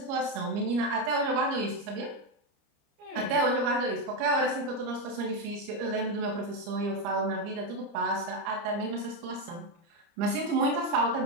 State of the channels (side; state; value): left; late; 30 ms